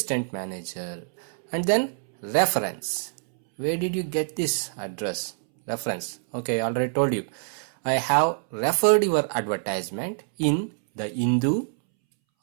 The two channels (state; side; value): silent; left; 61 dB below the other